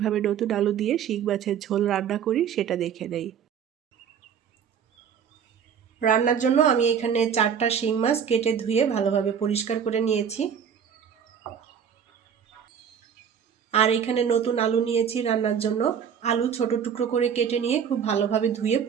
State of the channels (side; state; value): left; quieter; 7.8 dB